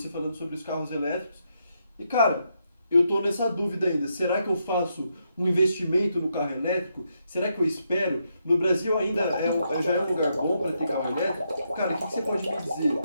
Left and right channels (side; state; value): both; inverted; correlation -0.80